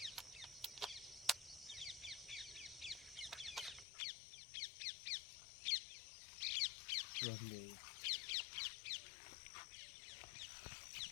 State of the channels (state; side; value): drops out; right; at 3.9 s